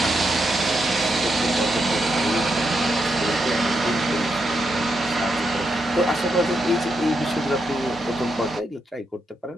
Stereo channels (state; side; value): normal; both; correlation 0.82